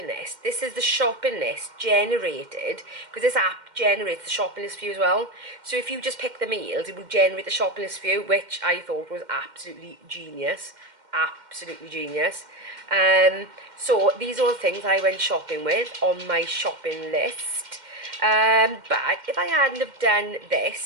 list, this is the shopping list generated, because this app generates the shopping list for you as well. So if you just pick the meals, it will generate the shopping list for you, which I thought was absolutely genius. Absolutely genius. So these are all the things I went shopping with on my shopping list. But if I hadn't have done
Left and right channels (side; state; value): left; late; 2.1 ms